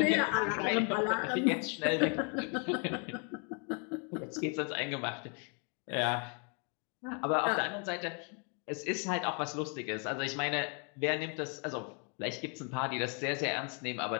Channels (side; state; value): right; quieter; 37.4 dB